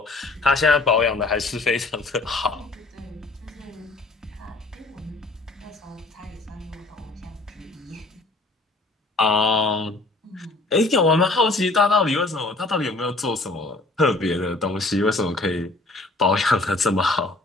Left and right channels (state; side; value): quieter; right; 3.1 dB